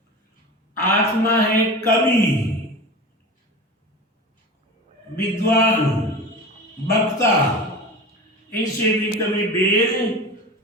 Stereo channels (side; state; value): both; normal; correlation 0.31